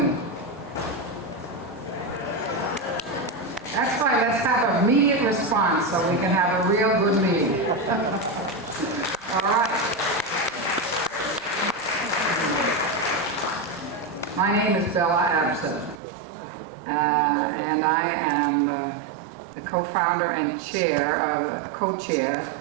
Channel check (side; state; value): left; drops out; at 16.0 s